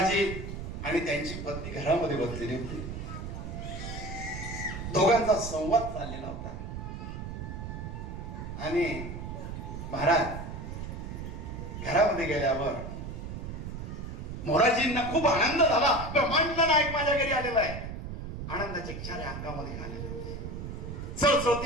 आणि त्यांची पत्नी घरामध्ये बसलेली होती. दोघांचा संवाद चाललेला होता. आणि महाराज घरामध्ये गेल्यावर मोराजींना खूप आनंद झाला. ब्रह्मांड नायक माझ्या घरी आलेला आहे. आनंदाचे क्षारे अंगामध्ये आलेले होते.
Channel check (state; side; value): noise; right; rumble, 7 dB below the sound